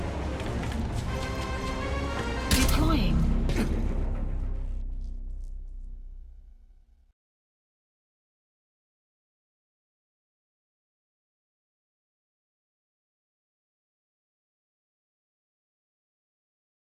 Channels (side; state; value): both; identical; correlation 1.00